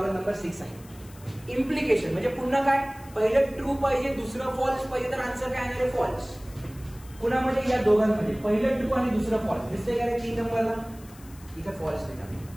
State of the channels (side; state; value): left; noise; hiss, 23 dB below the sound